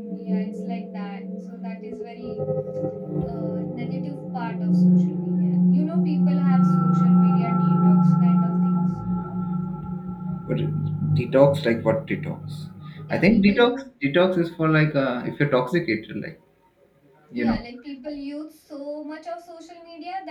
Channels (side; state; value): both; identical; correlation 1.00